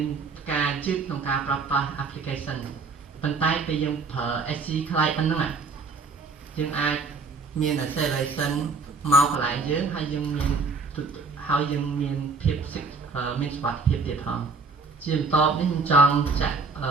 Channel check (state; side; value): quieter; left; 4.3 dB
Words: ការជឿក្នុងការប្រើប្រាស់ application ប៉ុន្តែពេលយើងប្រើ SC Client ហ្នឹងយើងអាចមាន acceleration មកកន្លែងយើងហើយយើងមានភាពមានសុវត្ថិភាពទៀតផងជាបន្តនេះខ្ញុំចង់ចាក់